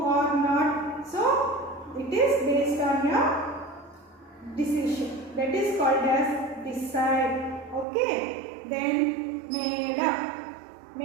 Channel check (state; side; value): drops out; left; at 7.9 s